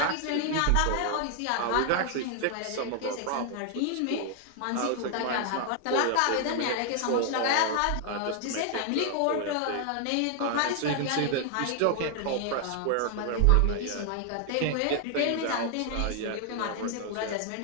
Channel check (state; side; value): different; both; correlation 0.00